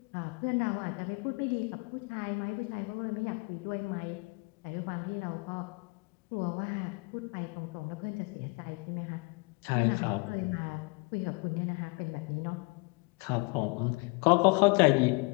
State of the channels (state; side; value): quieter; right; 30.1 dB